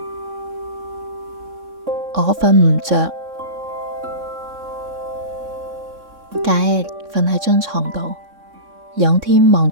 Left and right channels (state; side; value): late; left; 3.6 ms